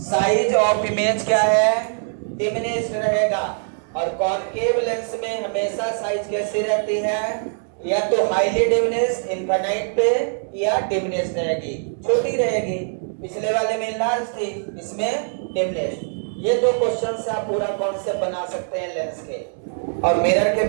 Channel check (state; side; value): silent; left; digital silence